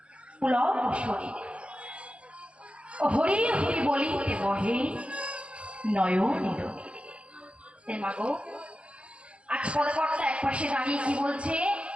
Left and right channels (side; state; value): left; late; 0.060 ms